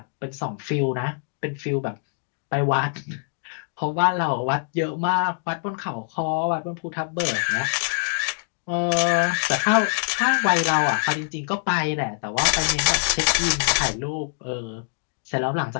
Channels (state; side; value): silent; right; 62 dB below the other